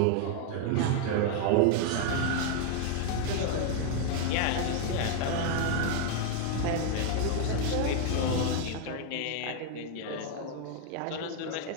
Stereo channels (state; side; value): different; both; correlation 0.00